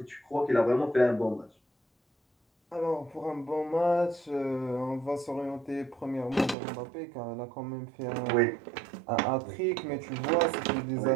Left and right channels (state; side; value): drops out; left; at 6.6 s